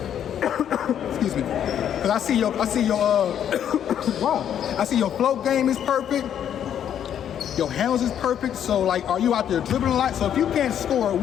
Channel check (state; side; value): quieter; right; 9.5 dB